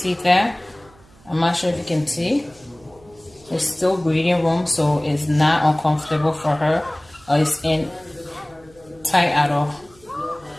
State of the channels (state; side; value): noise; right; hum, 27 dB below the sound